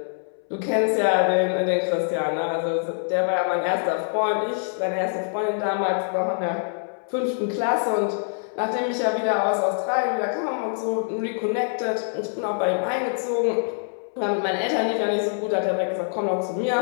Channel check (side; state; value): right; silent; 62 dB below the other